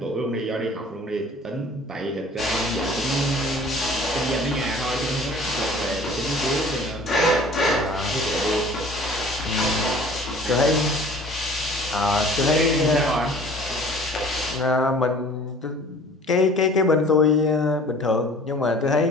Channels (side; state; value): both; normal; correlation 0.48